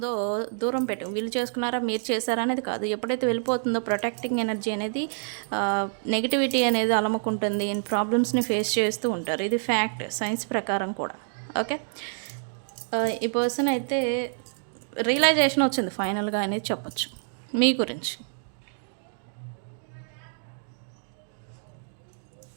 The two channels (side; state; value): left; silent; digital silence